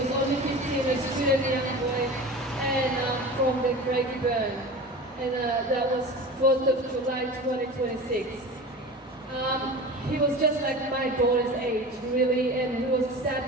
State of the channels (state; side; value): normal; both; correlation 0.34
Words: only 15, a student young boy, and from the Craigie Burn. And that was 4th of July 2026. He was just like my daughter's age, really, and he was